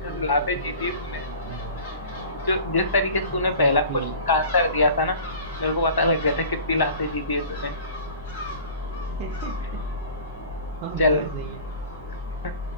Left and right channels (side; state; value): both; inverted; correlation -0.42